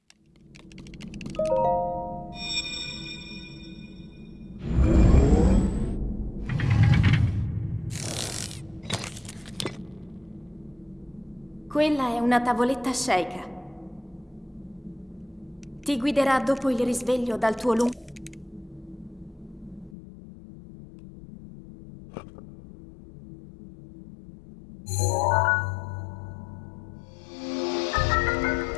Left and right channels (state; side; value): drops out; right; at 20.0 s